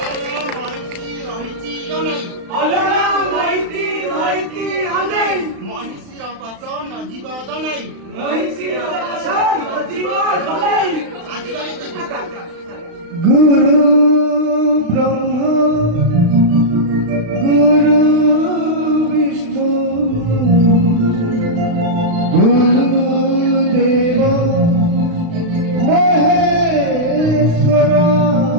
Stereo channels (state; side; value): late; left; 35 ms